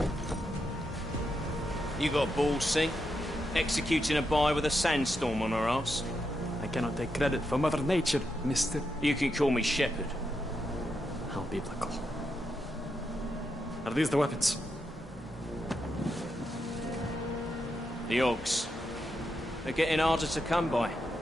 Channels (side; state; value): both; normal; correlation 0.84